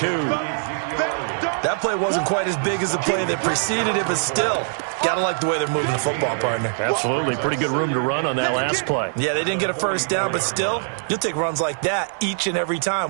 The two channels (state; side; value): silent; left; 64 dB below the other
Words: That play wasn't quite as big as the play that preceded it, but still, gotta like the way they're moving the football, partner. Absolutely. Pretty good room to run on that last play. Yeah, they didn't get a 1st down, but still, you'll take runs like that each and every